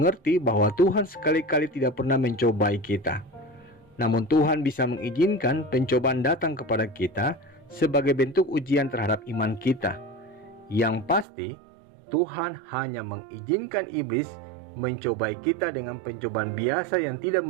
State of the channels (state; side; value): drops out; left; at 11.2 s